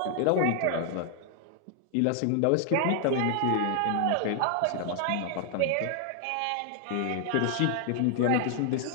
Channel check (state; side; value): different; both; correlation 0.00